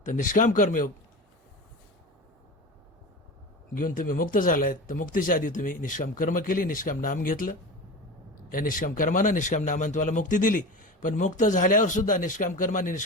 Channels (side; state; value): both; normal; correlation 0.29